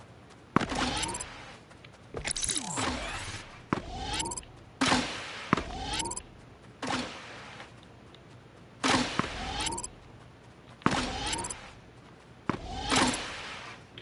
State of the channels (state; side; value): identical; both; correlation 1.00